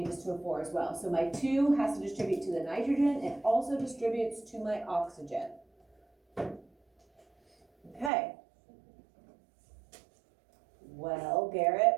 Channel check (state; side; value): drops out; left; at 8.1 s